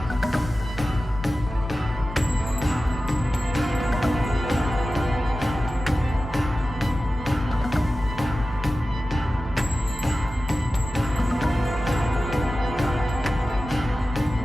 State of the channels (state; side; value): normal; both; correlation 0.95